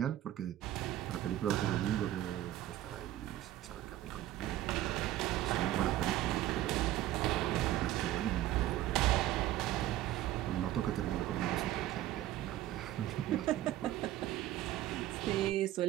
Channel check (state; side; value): quieter; left; 14.0 dB